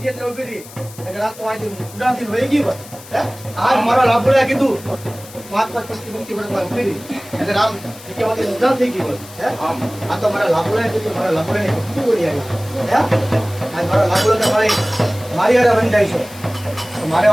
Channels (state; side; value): noise; left; hiss, 18 dB below the sound